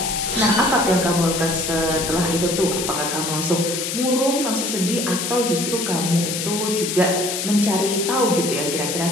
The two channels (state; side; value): noise; left; hiss, 3 dB below the sound